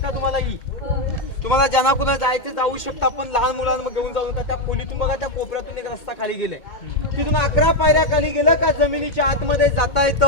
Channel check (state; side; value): late; right; 2.2 ms